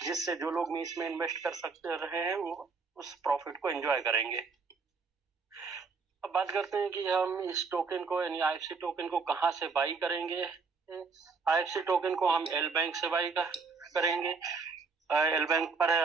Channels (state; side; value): quieter; left; 4.8 dB